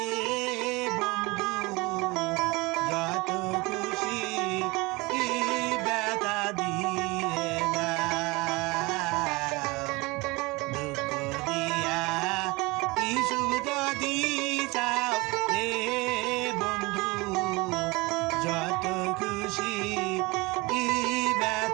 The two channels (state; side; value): quieter; left; 24.1 dB